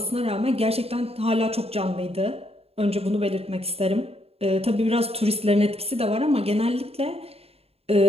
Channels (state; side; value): late; left; 0.29 ms